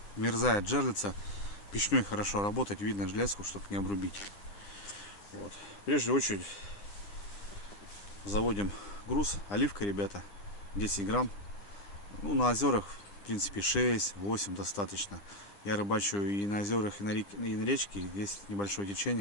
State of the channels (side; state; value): right; late; 9.9 ms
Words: мерзает жерлица. Печной хорошо работать, видно железку, чтобы не обрубить. Вот. Прежде очередь заводим груз. Оливка, ребята, 10 грамм. Ну, на озерах, в принципе, 6-8 достаточно. Я рыбачу и на озерах, и на речке. Есть небольшое